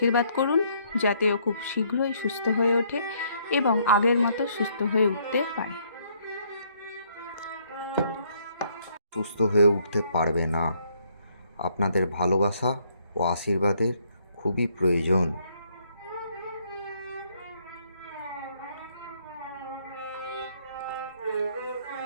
করুন যাতে ও খুব শীঘ্রই সুস্থ হয়ে ওঠে এবং আগের মতো সুস্থ হয়ে উঠতে পারে। সুস্থ হয়ে উঠতে পারবে না। আপনাদের ভালোবাসা ও আশীর্বাদের খুবই প্রয়োজন।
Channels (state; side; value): inverted; both; correlation -0.68